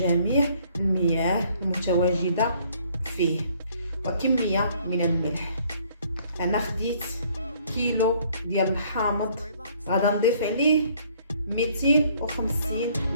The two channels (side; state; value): both; inverted; correlation -0.61